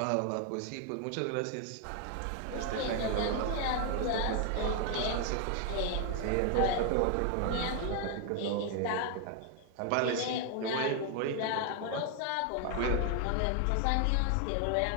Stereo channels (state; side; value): different; both; correlation 0.00